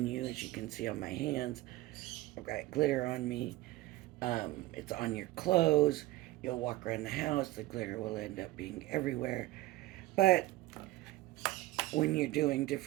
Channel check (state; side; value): quieter; left; 17.8 dB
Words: you, as you can see on my hands. I've got glitter on me. It's on your clothes. You'll walk around the house, the glitter will end up being everywhere. But when you're doing